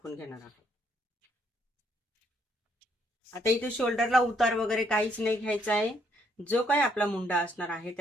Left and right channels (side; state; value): both; normal; correlation 0.70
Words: घेणार आहोत। आता इथे शोल्डरला उतार वगैरे काहीच नाही घ्यायचा आहे। जो काही आपला मुंडा असणार आहे